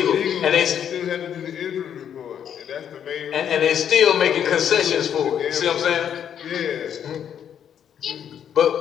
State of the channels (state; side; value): quieter; right; 8.9 dB